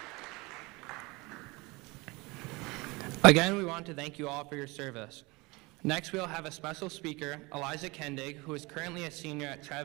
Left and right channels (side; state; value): left; quieter; 24.6 dB